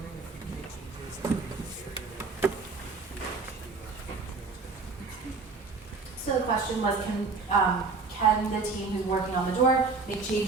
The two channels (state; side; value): quieter; left; 4.3 dB